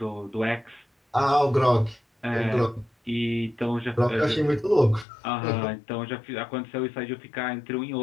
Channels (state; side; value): drops out; right; at 5.1 s